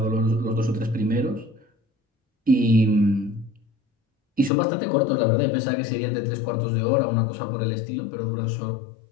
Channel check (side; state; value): right; drops out; at 4.5 s